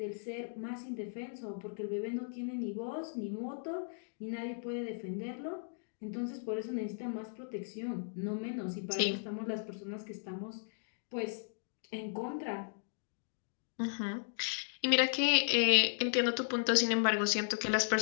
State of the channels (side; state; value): right; silent; digital silence